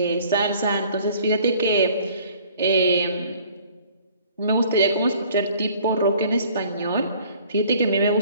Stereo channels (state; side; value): inverted; both; correlation -0.54